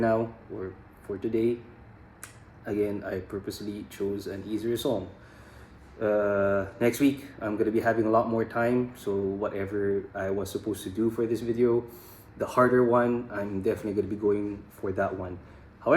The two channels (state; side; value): identical; both; correlation 1.00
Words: or for today, again, I purposely chose an easier song. Next week, I'm gonna be having a lot more time, so whatever I was supposed to do for this video, the harder one, I'm definitely gonna be going for that one.